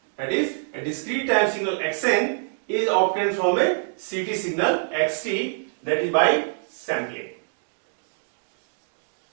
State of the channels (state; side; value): silent; left; digital silence